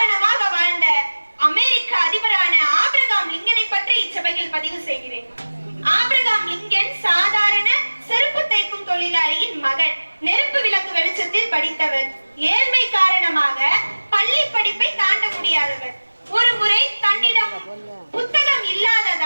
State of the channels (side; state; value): both; inverted; correlation -1.00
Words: வாழ்ந்த அமெரிக்க அதிபரான ஆபிரகாம் லிங்கனை பற்றி இச்சபையில் பதிவு செய்கிறேன். ஆபிரகாம் லிங்கன் சாதாரண செருப்பு தைக்கும் தொழிலாளியின் மகன். நெருப்பு விளக்கு வெளிச்சத்தில் படித்தவர். ஏழ்மை காரணமாக பள்ளி படிப்பை தாண்ட முடியாதவர். ஒரு முறை தன்னிடம் புத்தகம்